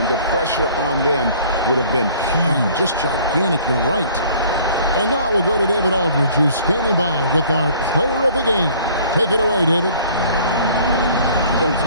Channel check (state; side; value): inverted; both; correlation -0.53